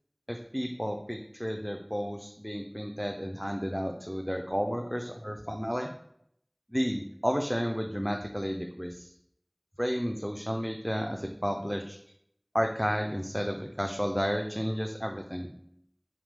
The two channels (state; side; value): identical; both; correlation 1.00